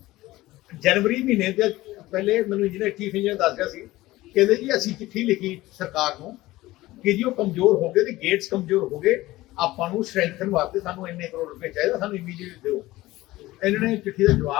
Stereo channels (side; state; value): right; quieter; 17.9 dB